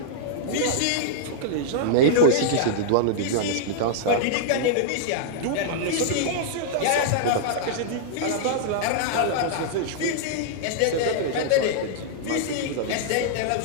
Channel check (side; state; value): both; different; correlation -0.01